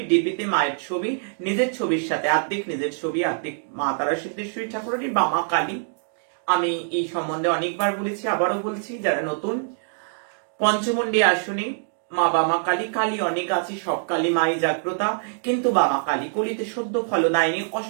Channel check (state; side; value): silent; left; digital silence